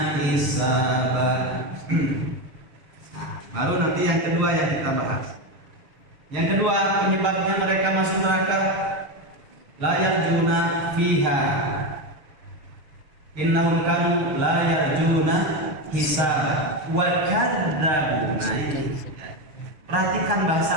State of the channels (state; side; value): late; left; 6.5 ms